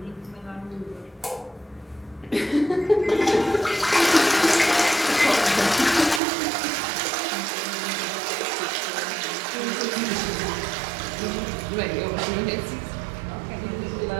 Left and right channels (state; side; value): drops out; left; at 6.2 s